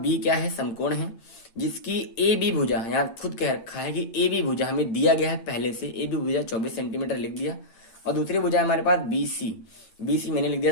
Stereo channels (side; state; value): right; late; 8.8 ms